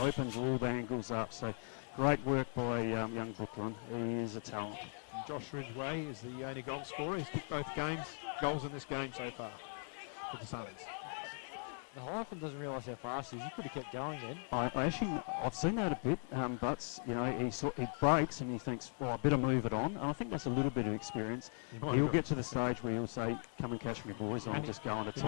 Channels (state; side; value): silent; right; 52 dB below the other